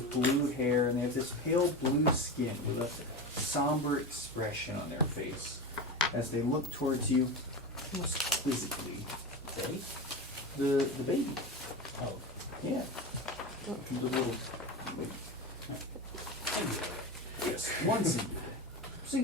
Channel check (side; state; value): both; normal; correlation 0.24